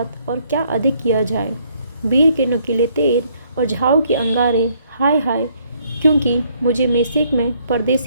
और क्या अधिक किया जाए। वीर के नुकीले तीर और झाऊ के अंगारे, हाय हाय, क्योंकि मुझे मेशेक में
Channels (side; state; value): both; inverted; correlation -0.67